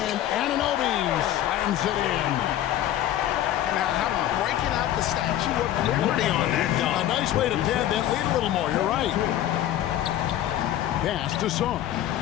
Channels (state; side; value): quieter; right; 12.4 dB